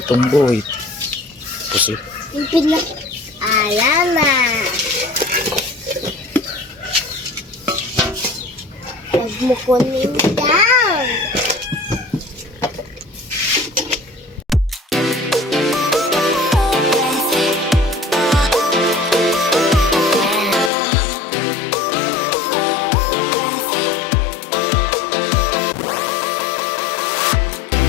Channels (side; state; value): right; drops out; at 20.7 s